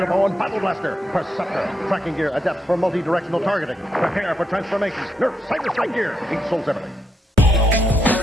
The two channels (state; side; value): normal; both; correlation 0.81